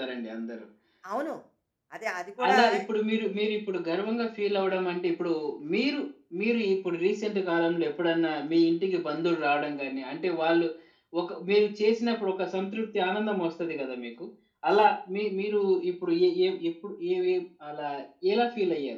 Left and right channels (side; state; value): both; identical; correlation 1.00